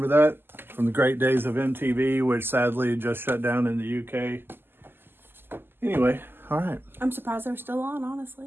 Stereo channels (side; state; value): left; late; 0.10 ms